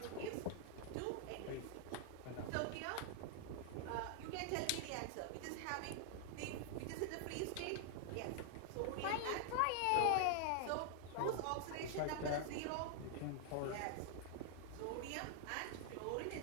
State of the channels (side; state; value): both; different; correlation 0.00